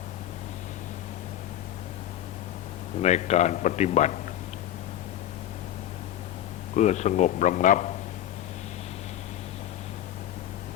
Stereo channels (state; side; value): quieter; right; 12.1 dB